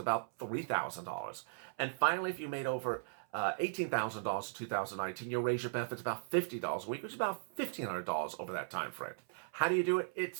$3,000. And finally, if you made over $18,000 in 2019, you'll raise your benefits about $50 a week, which is about $1,500 over that time frame. How do you do it? It's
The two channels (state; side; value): silent; left; 53 dB below the other